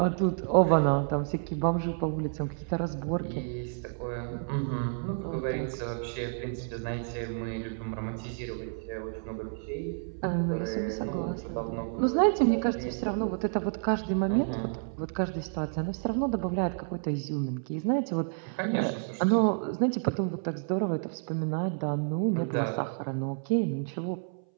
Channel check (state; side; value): silent; left; 58 dB below the other